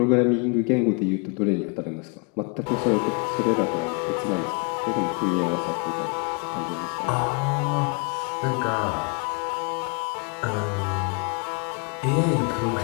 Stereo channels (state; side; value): quieter; right; 33.5 dB